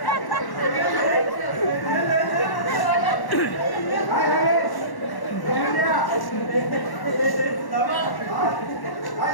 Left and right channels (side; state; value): right; late; 1.1 ms